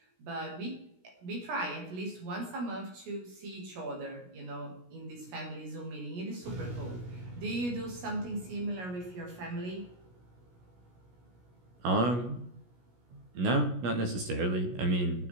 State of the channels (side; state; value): left; late; 17 ms